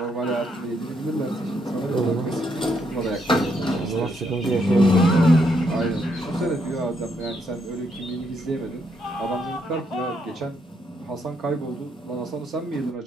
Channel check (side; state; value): both; normal; correlation 0.75